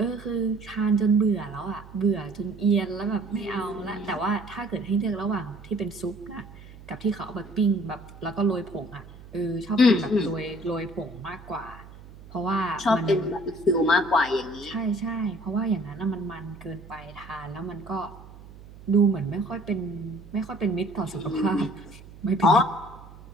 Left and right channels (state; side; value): noise; right; hum, 18 dB below the sound